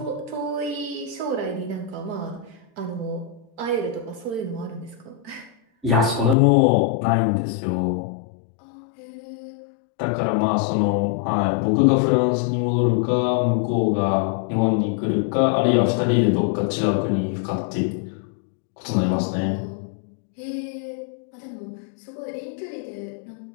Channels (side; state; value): right; drops out; at 6.4 s